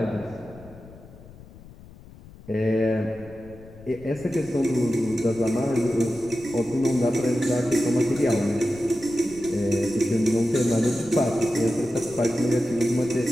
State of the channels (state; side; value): noise; left; rumble, 20 dB below the sound